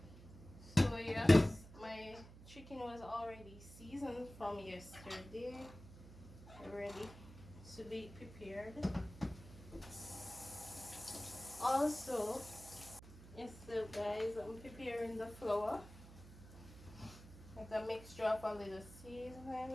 So yes, my chicken was already seasoned from yesterday, ready to be prepared. Also, so guys, I'm preparing the flour. It's a mixture of a little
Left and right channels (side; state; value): right; noise; hum, 17 dB below the sound